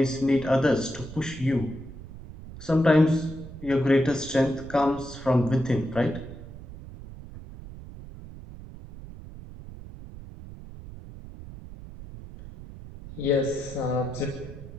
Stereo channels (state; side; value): noise; right; rumble, 14 dB below the sound